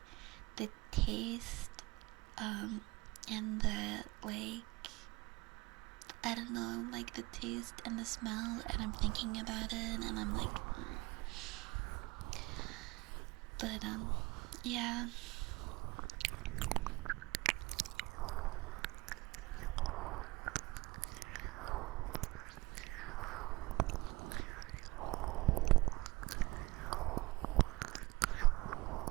the taste, and the like, I don't know, like the taste and the smell, and I'm thinking about it, and I'm like, but yeah.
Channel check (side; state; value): left; quieter; 21.9 dB